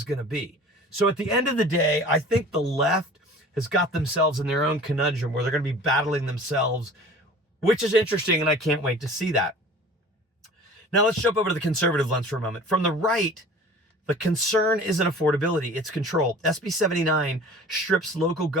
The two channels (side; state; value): both; normal; correlation 0.44